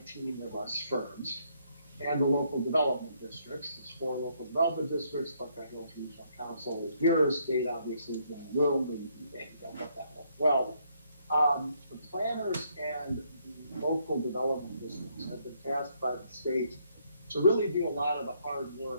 of us firms, and the local development districts, there's 4 local development districts, Buckeye Hills Regional Council is here, state obviously is in the room, and don't let that work well. The planners and the local development districts have been tasked by the state to really do a lot of the hard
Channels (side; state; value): both; inverted; correlation -0.71